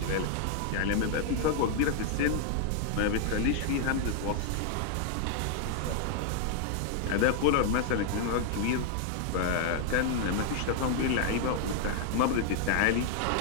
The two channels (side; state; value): both; different; correlation 0.00